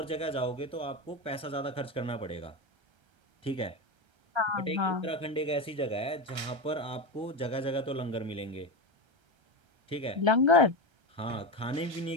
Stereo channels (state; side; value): late; left; 1.3 ms